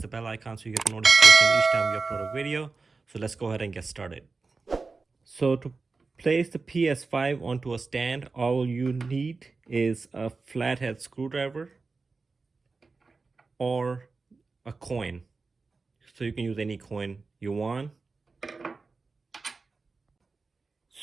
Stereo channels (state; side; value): quieter; left; 4.1 dB